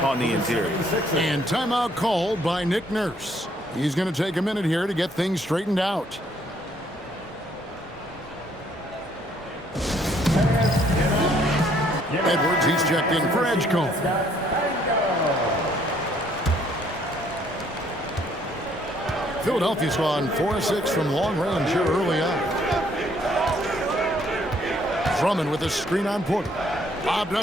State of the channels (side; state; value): both; normal; correlation 0.66